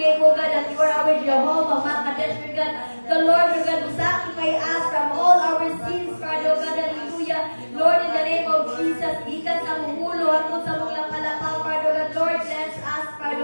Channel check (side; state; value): both; inverted; correlation -1.00